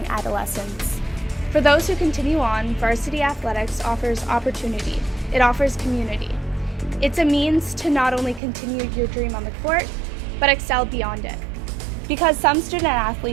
adolescence. For those who continue on, varsity athletics offers opportunity. It offers community. It's a means to not only continue your dream on the court, but excel beyond it. Because some student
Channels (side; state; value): left; drops out; at 8.4 s